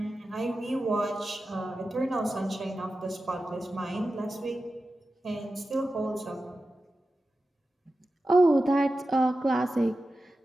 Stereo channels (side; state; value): both; normal; correlation 0.93